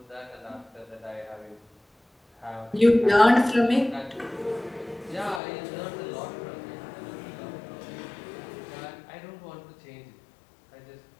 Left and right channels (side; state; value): right; drops out; at 5.4 s